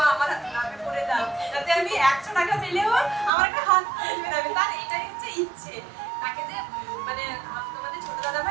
ইচ্ছে, তাকে যে মানে তোমাদের ছোট দাদা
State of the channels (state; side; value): drops out; left; at 3.3 s